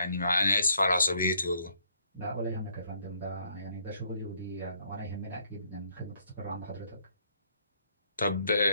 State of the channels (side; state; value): both; inverted; correlation -0.68